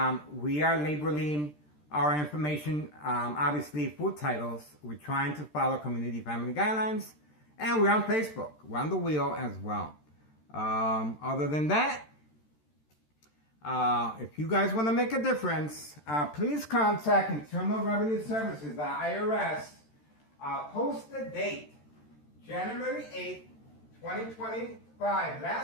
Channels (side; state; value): right; late; 13 ms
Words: we are labeling our information, obviously, food titles. We're trying to follow community family guidelines, and we're on Facebook. We're on the wheel as well. Other than that, if you guys want to make a difference, please contact Internal Revenue Services, the IRS. Post the date, January 8th, 2025.